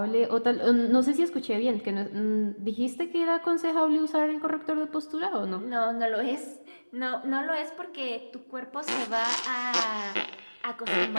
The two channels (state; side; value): inverted; both; correlation -1.00